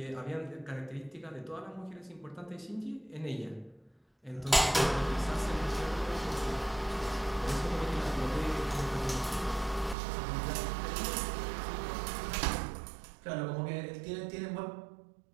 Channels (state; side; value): drops out; left; at 10.0 s